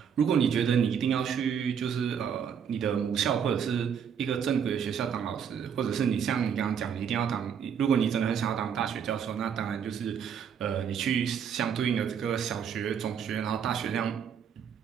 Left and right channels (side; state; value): left; quieter; 7.7 dB